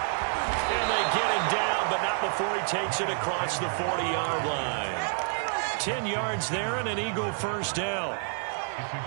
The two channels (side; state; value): left; silent; 57 dB below the other